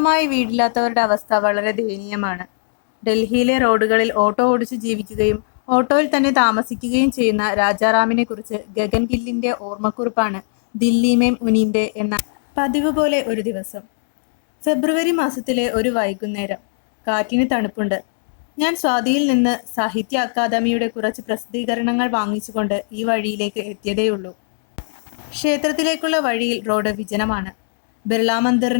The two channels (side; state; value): right; silent; digital silence